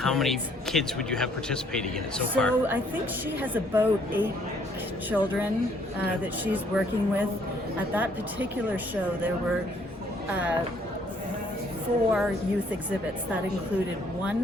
kids. many kids would you have participating in it so So far? I think she has about 8 children that she's working with. At that particular show, there were 4 youth exhibits. That included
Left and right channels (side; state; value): both; normal; correlation 0.64